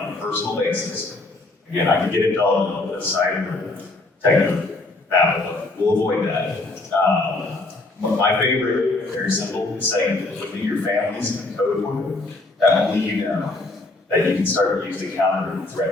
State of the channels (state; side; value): quieter; right; 3.0 dB